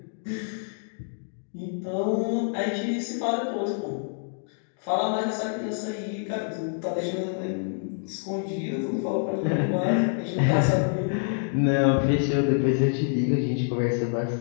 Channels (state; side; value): silent; right; digital silence